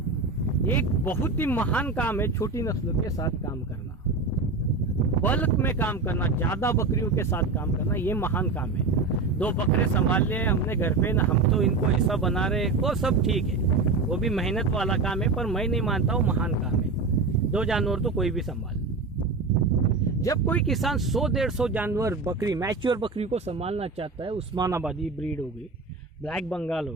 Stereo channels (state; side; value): quieter; left; 3.9 dB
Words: एक बहुत ही महान काम है छोटी नस्लों के साथ काम करना, बल्क में काम करना, ज्यादा बकरियों के साथ काम करना, ये महान काम है। 2 बकरे संभाल लिए हमने घर पे, ना हम तो इनको ऐसा बना रहे, वो सब ठीक है, वो भी मेहनत वाला काम है, पर मैं नहीं मानता हूँ महान काम है। 2 जानवर तो कोई भी संभाल। जब कोई किसान 100-150 जानवर बकरी, मैच्योर बकरी को संभालना चाहता है, उस्मानाबादी ब्रीड हो गई, ब्लैक बंगाल हो